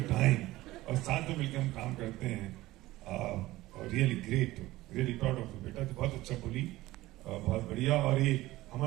टाइम, और साथ में मिलकर हम काम करते हैं। और really great, really proud of you बेटा, तो बहुत अच्छा बोली, बहुत बढ़िया। और ये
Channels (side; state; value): left; quieter; 17.6 dB